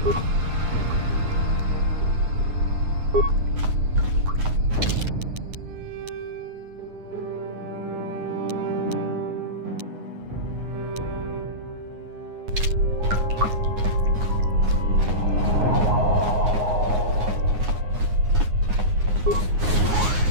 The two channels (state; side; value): late; left; 9.5 ms